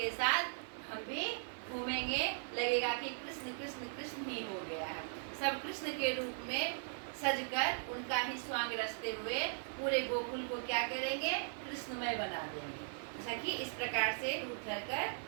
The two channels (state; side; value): silent; left; 52 dB below the other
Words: साथ हम भी घूमेंगे, लगेगा कि कृष्ण कृष्ण कृष्ण ही हो गया है। सब कृष्ण के रूप में सजकर उनका ही स्वांग रचते हुए पूरे गोकुल को क्या करेंगे, कृष्णमय बना देंगे। सखी इस प्रकार से रूप धरकर